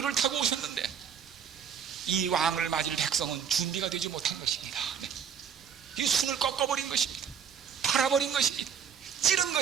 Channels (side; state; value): left; quieter; 7.6 dB